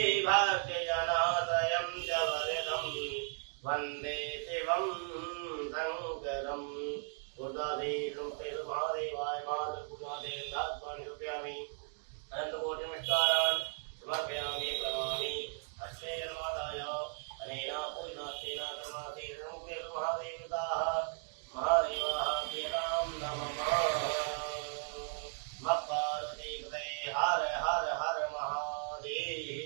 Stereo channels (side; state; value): left; silent; 54 dB below the other